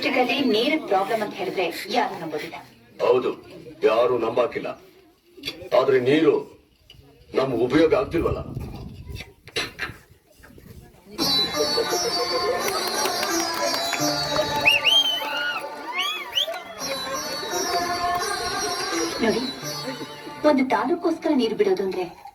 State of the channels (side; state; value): both; identical; correlation 1.00